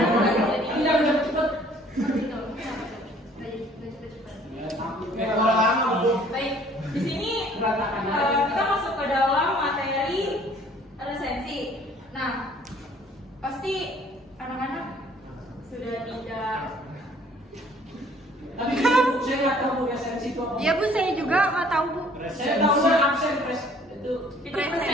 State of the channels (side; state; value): both; normal; correlation 0.57